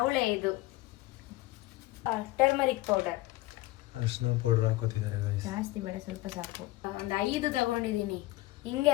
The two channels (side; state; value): right; quieter; 18.7 dB